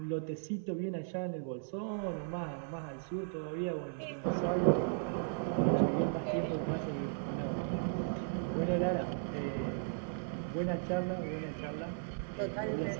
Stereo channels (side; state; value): left; silent; 54 dB below the other